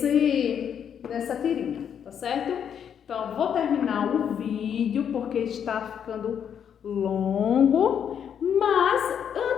tirinha, tá certo? Então, vou terminar o vídeo porque está ficando longo, mas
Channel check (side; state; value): right; quieter; 8.3 dB